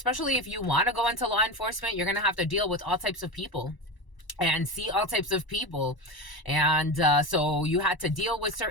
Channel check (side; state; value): right; late; 1.0 ms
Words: if you want to go into law enforcement, you're going to have to deal with all types of people and see all types of people. And so you had to deal with